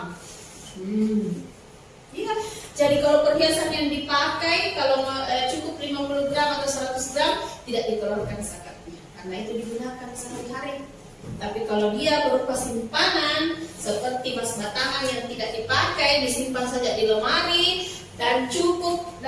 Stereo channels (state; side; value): identical; both; correlation 1.00